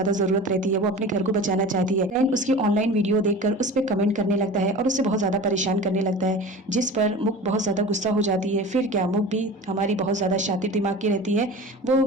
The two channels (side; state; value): both; normal; correlation 0.35